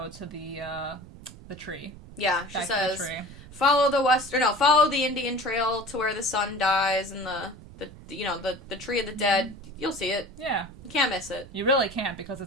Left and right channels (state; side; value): noise; right; rumble, 18 dB below the sound